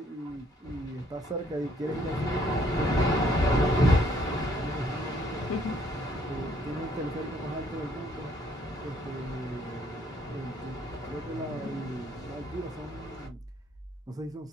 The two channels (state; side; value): normal; both; correlation 0.66